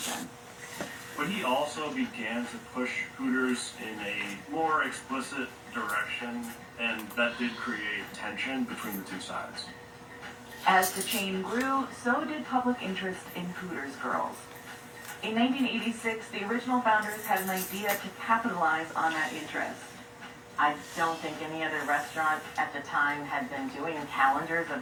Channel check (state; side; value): identical; both; correlation 1.00